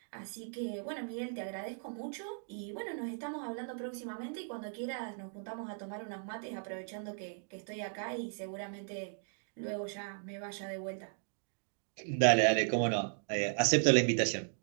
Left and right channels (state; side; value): silent; left; digital silence